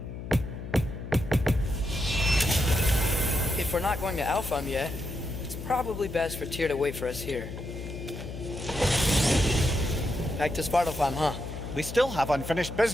not going to Alpha yet, it's probably best for Tyr to wait for us here. Back to Svartalfheim, huh? We still have unfinished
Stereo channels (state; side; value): noise; left; hum, 9 dB below the sound